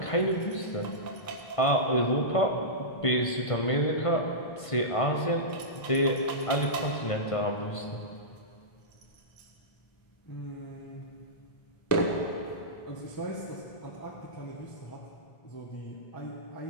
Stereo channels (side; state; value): right; late; 1.5 ms